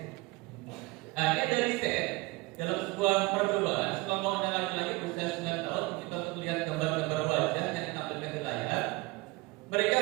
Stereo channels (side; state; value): left; quieter; 23.2 dB